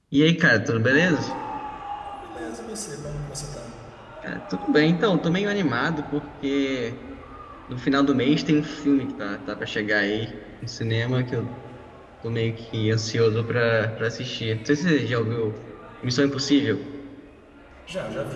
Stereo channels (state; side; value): identical; both; correlation 1.00